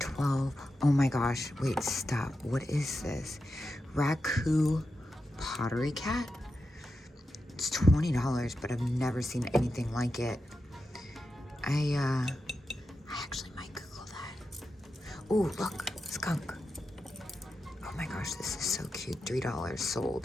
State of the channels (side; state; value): both; normal; correlation 0.89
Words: Oh my gosh, wait, stop. What is this? Raku pottery cat? It's $20, but I've never seen anything like it. I actually might Google that. Oh, look, skunk. Oh my gosh, this is so cute. $3